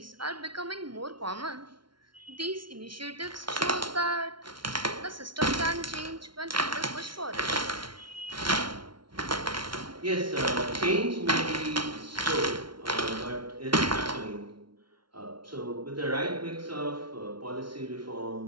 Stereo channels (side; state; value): left; late; 0.73 ms